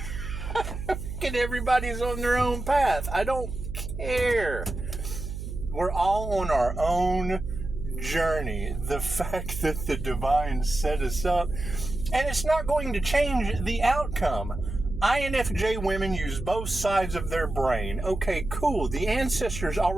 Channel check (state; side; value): noise; right; hum, 7 dB below the sound